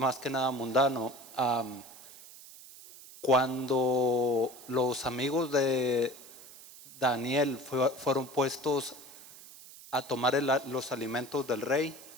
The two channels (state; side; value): noise; right; hiss, 18 dB below the sound